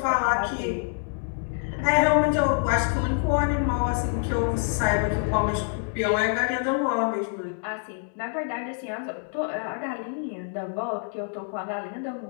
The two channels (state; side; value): silent; right; 61 dB below the other